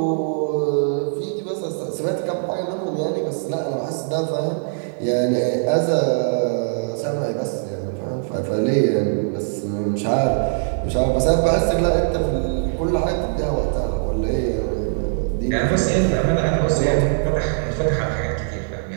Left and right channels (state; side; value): silent; left; digital silence